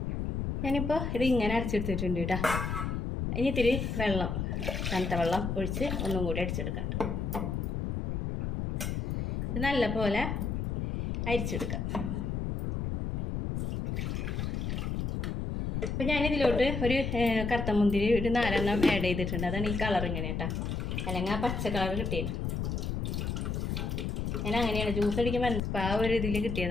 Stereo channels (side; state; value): left; noise; rumble, 2 dB below the sound